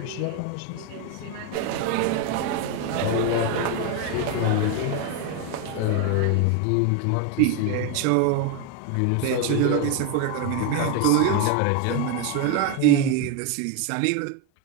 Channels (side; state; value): both; different; correlation 0.01